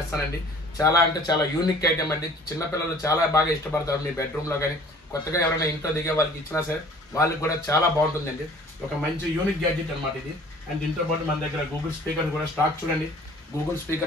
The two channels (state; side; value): normal; both; correlation 0.50